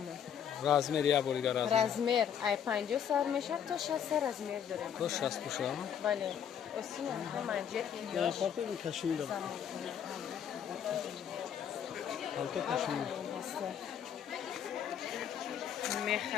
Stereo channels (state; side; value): quieter; right; 8.7 dB